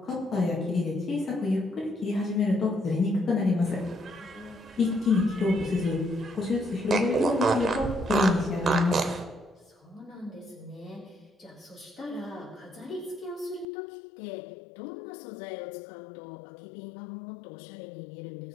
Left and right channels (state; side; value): drops out; right; at 13.7 s